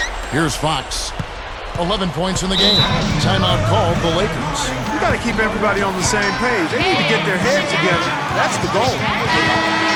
Here's Fox. 11 points in the game. Timeout called the Lakers. You got to keep everybody on the same page. They need to get their heads together. That's the goal.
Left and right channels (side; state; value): both; identical; correlation 1.00